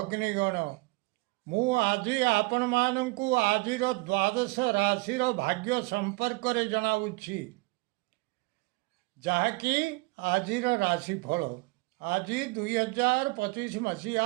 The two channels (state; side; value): quieter; left; 25.4 dB